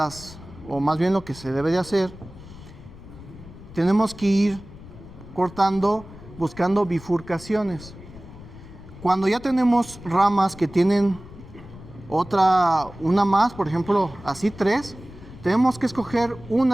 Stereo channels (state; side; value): noise; left; rumble, 17 dB below the sound